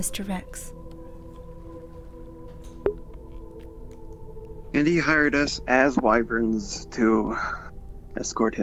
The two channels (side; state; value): both; identical; correlation 1.00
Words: Rex. And he hired us as wyverns to escort